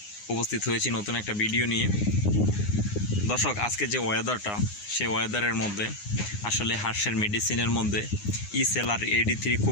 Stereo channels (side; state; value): right; late; 9.7 ms